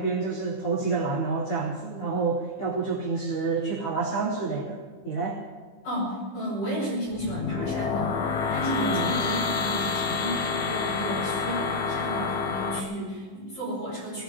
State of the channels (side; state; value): right; late; 15 ms